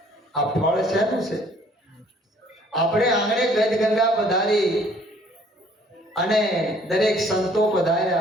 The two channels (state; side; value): normal; both; correlation 0.58